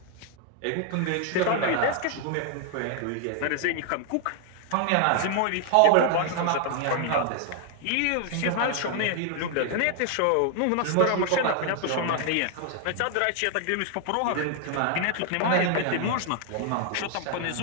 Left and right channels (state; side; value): different; both; correlation 0.00